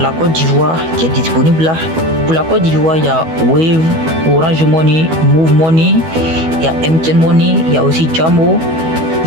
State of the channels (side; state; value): left; late; 12 ms